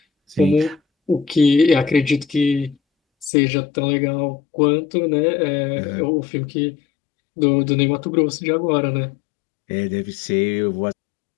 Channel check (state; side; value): drops out; right; at 3.3 s